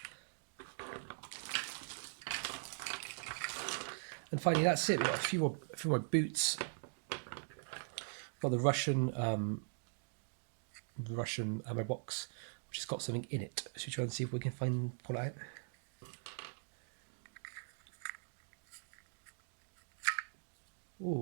And finally, that's it. We've got a few more boots. Got the Russian ammo box, which has got something in it. Should we try and see if we can pull it out?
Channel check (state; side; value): silent; left; digital silence